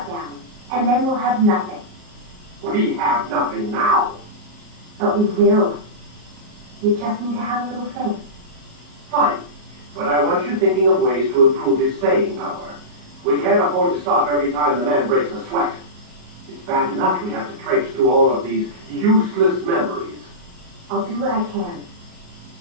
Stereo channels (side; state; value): left; late; 38 ms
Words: down. And then we'll have nothing. We have nothing now. But we will. You just need to have a little faith. Fine. But I want you thinking of ways to improve his staying power. We can't afford to stop every time the man breaks a sweat. It's bad enough we have to traipse through all of these useless memories. I'll do what I can.